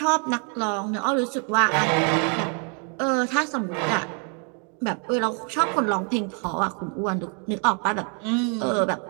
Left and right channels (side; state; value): left; quieter; 39.2 dB